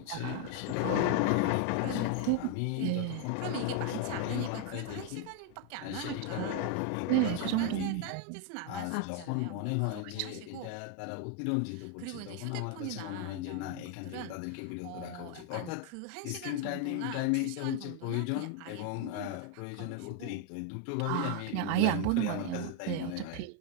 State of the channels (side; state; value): both; different; correlation 0.01